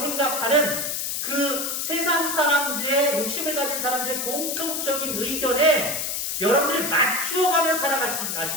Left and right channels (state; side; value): noise; left; hiss, 2 dB below the sound